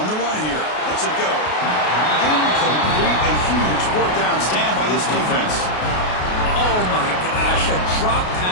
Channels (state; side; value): late; right; 33 ms